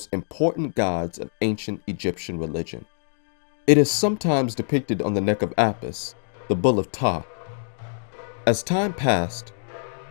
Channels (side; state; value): right; silent; digital silence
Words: important gods of ancient Egyptian religion. It is sometimes depicted on the neck of Apis, the bull of Ptah. As time passed,